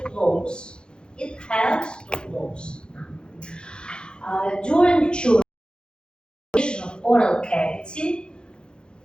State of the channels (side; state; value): right; late; 0.049 ms